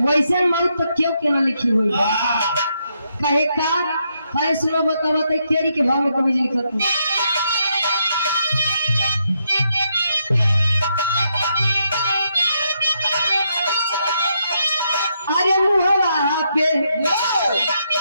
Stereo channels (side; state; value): both; inverted; correlation -0.79